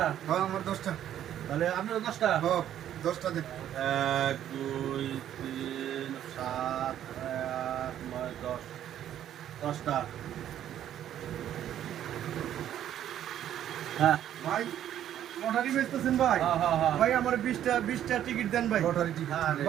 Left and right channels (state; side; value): quieter; left; 11.0 dB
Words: হ্যাঁ আমার 10টা। তাহলে আপনিও 10টা? হ্যাঁ 10টা দেন। 1 2 3 7 8 9 10 10টা। হ্যাঁ ভাই লটারি বেচতেছেন ভাই? হ্যাঁ হ্যাঁ হ্যাঁ। ভাই আমার 20টা টিকিট দেন ভাই। লটারি টিকিট আরে।